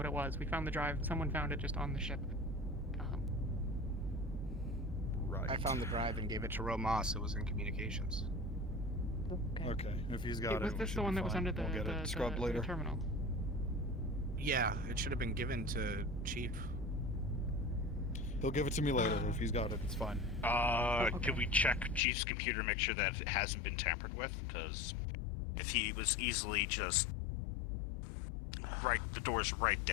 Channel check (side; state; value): right; drops out; at 22.0 s